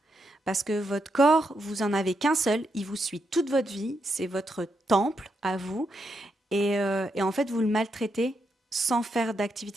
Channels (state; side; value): normal; both; correlation 0.81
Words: Parce que votre corps, vous en avez qu'un seul, il vous suit toute votre vie, c'est votre temple à vous, et en fait, vous le maltraitez sans faire